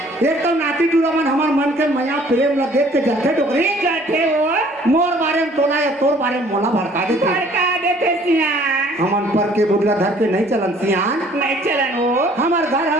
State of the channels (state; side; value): normal; both; correlation 0.56